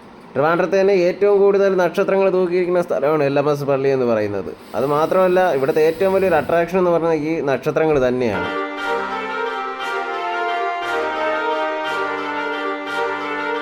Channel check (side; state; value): both; identical; correlation 1.00